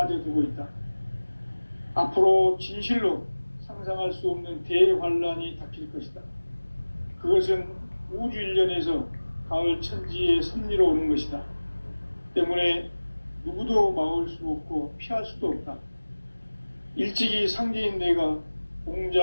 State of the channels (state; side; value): inverted; both; correlation -1.00